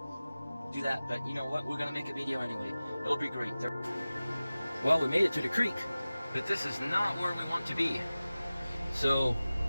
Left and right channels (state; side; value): inverted; both; correlation -0.97